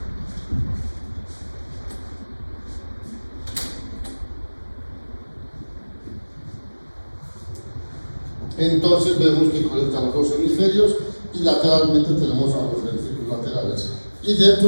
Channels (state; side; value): inverted; both; correlation -1.00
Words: Entonces vemos que conecta a los dos hemisferios, y lateralmente tenemos a los ventrículos laterales. Y